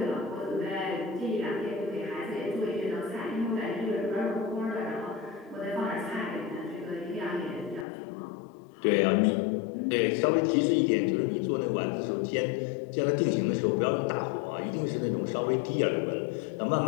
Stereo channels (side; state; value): right; drops out; at 7.9 s